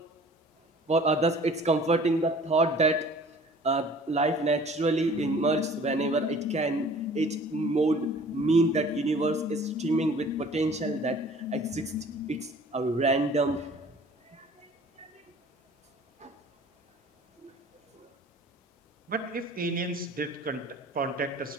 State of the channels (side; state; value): both; normal; correlation 0.49